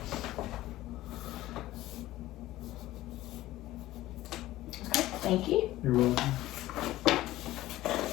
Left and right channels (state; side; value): quieter; right; 16.0 dB